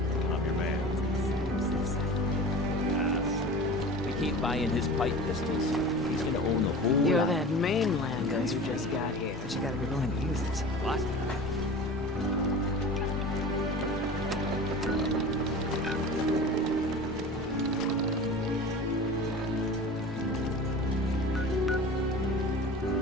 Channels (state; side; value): normal; both; correlation 0.36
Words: I'm your man. We keep buying his pipe pistols. He's gonna own the whole You're lot. that mainlander who just got here. But you gotta be willing to use it. What?